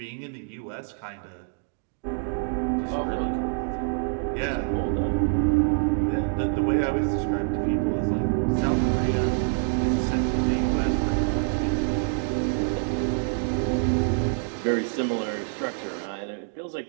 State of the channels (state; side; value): silent; left; digital silence